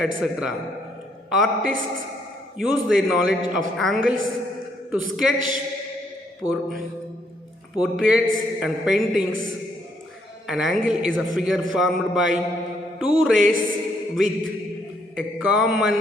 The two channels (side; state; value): both; normal; correlation 0.72